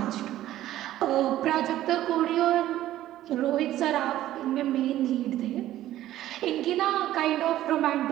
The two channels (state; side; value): quieter; left; 13.7 dB